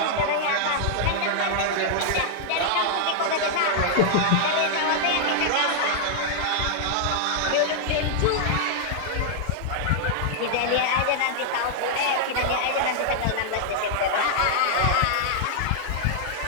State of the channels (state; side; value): different; both; correlation -0.01